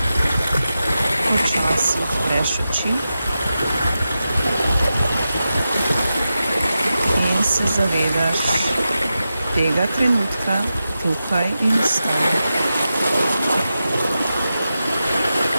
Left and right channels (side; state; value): both; inverted; correlation -0.91